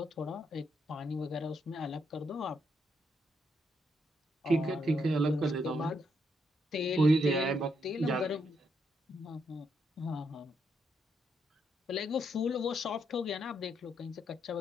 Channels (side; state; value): both; normal; correlation 0.78